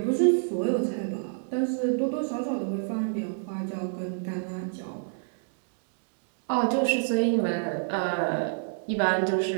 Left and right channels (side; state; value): left; silent; digital silence